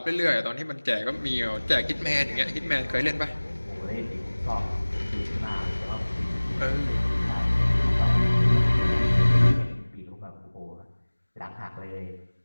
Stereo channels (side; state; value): both; inverted; correlation -1.00